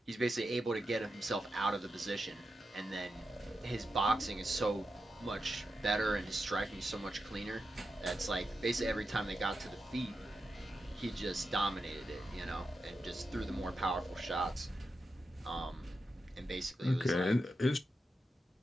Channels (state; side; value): normal; both; correlation 0.88